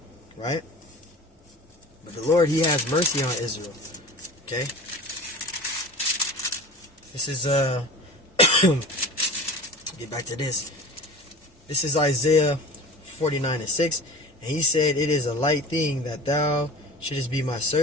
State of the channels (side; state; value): both; normal; correlation 0.37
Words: right? But the Lord, he has mercy on Israel. Okay? This is, get back to this. This is Isaiah 49 and 6. And he said, it is a light thing that thou shouldest be my